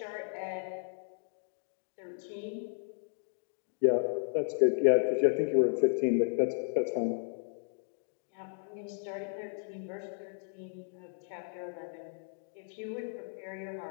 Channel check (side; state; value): right; silent; digital silence